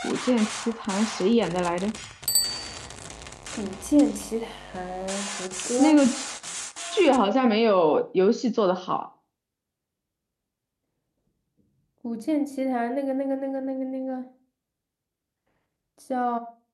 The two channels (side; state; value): both; identical; correlation 1.00